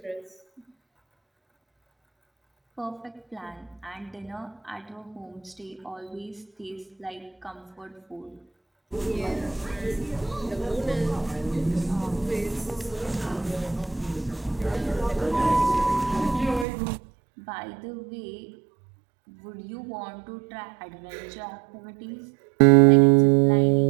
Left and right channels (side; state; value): left; drops out; at 16.7 s